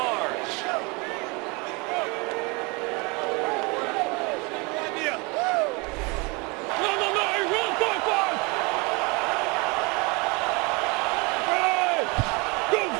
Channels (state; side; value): quieter; left; 28.5 dB